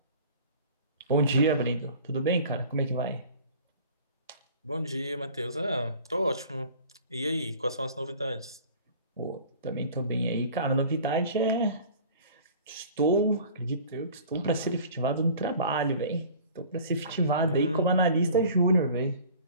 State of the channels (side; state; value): both; inverted; correlation -0.45